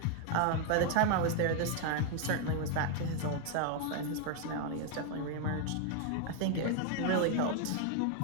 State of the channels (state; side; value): different; both; correlation 0.00